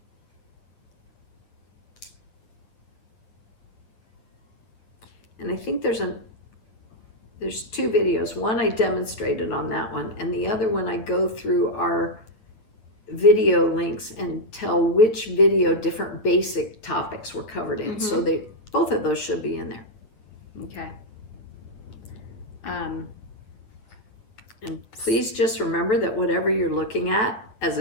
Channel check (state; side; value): late; right; 9.1 ms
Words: And I think there's two videos. One I demonstrated on that one, and the other one I go through our video links and tell which video different basic topics were covered in. So both of those should be in there. Okay. And please just remember that whatever you're looking at as